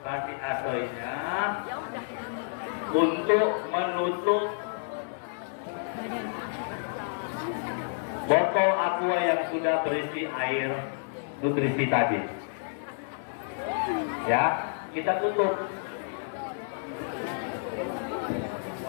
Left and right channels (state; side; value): silent; right; 58 dB below the other